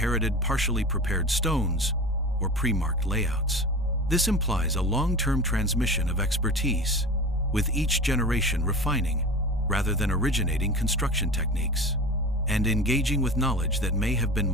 partially prepared stones or pre-marked layouts. This implies a long-term transmission of expertise, with each generation refining rather than originating construction techniques, and engaging with knowledge that may have been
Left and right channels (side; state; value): both; normal; correlation 0.33